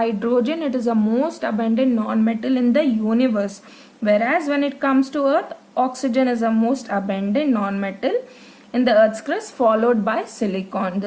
it is the most abundant non-metal in the universe, whereas when it comes to earth, oxygen is the most abundant non-metal in the earth's crust, followed by silicon.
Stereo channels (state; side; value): identical; both; correlation 1.00